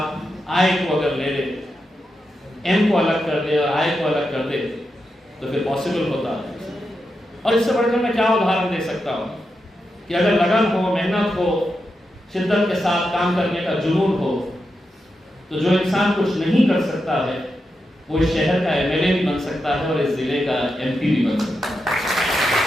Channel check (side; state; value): both; normal; correlation 0.87